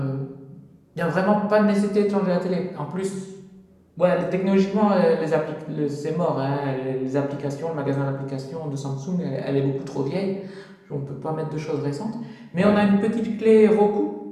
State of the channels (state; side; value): identical; both; correlation 1.00